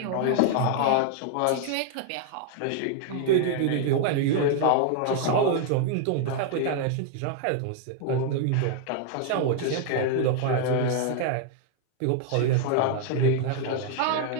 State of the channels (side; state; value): both; different; correlation 0.00